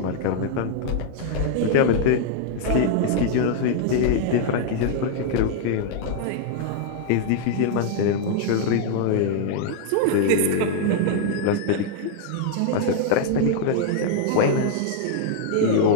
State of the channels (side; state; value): both; different; correlation 0.00